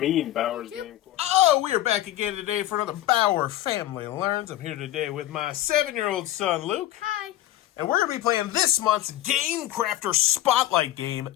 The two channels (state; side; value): quieter; right; 13.9 dB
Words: Bauer's Game Corner? Oh, we are back again today for another Bauer Family Learns. I'm here today with my 7-year-old son, Luke. Hi. And we're going to be playing this month's Gamecrafter Spotlight game,